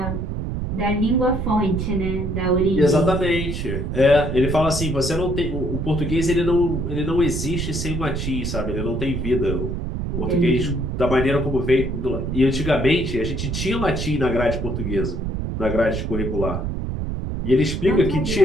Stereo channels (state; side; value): noise; right; rumble, 3 dB below the sound